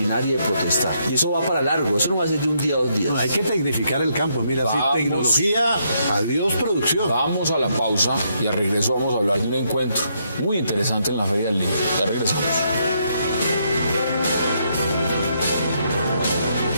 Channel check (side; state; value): both; inverted; correlation -0.75